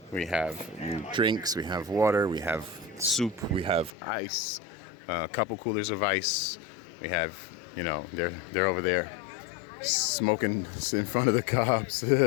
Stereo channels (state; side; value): drops out; right; at 3.9 s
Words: We have drinks. We have water. We have soup. We have ice. A couple coolers of ice. We have, they're over there smoking in front of the cops.